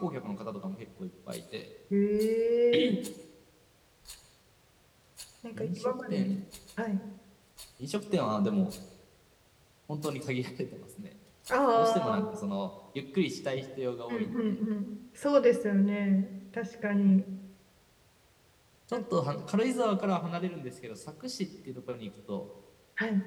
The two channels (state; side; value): identical; both; correlation 1.00